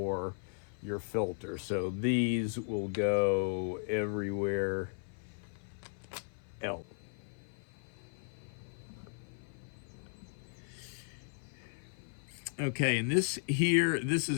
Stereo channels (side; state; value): right; silent; 54 dB below the other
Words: your filter. So these will go everywhere else. Okay, and this here, this